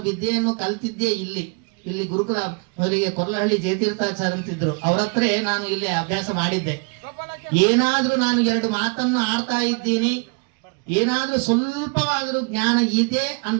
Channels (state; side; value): quieter; left; 34.1 dB